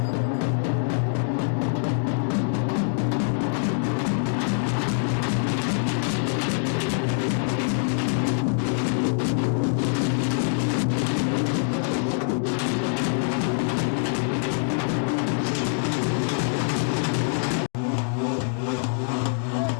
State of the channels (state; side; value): silent; right; digital silence